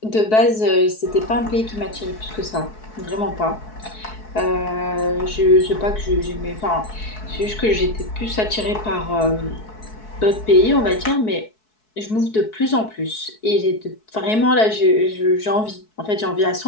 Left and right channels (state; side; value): late; right; 4.6 ms